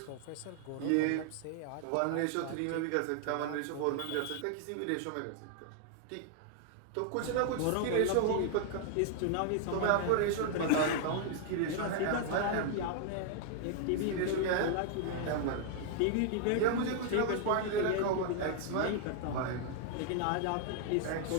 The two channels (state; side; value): different; both; correlation 0.00